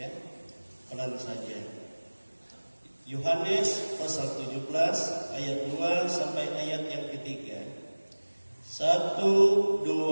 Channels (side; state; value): both; inverted; correlation -1.00